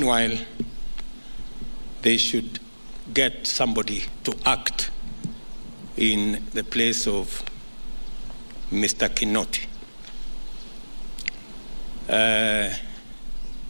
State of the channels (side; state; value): both; inverted; correlation -1.00